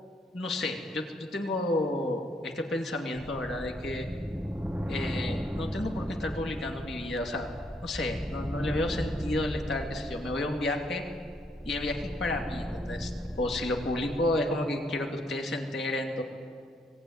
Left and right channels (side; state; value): both; normal; correlation 0.72